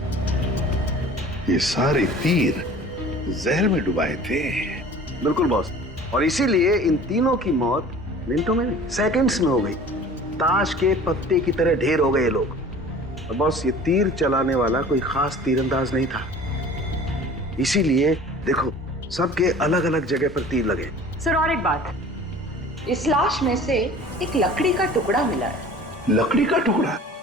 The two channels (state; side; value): normal; both; correlation 0.44